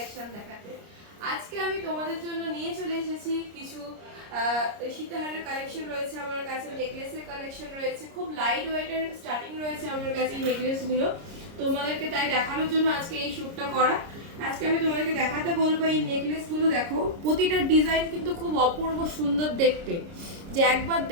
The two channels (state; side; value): late; left; 30 ms